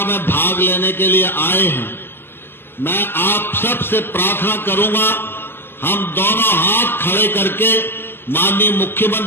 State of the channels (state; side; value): late; right; 0.10 ms